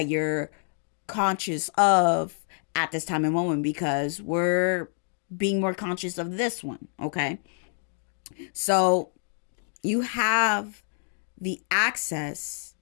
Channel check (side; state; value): right; silent; 55 dB below the other